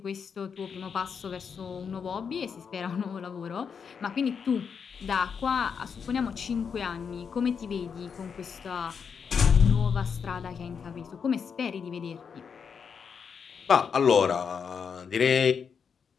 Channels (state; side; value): quieter; right; 6.5 dB